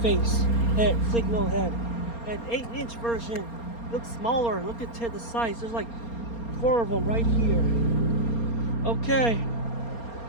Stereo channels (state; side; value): late; right; 4.3 ms